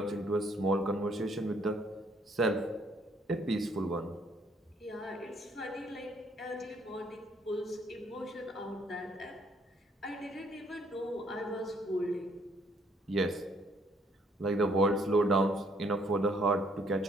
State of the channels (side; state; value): both; normal; correlation 0.66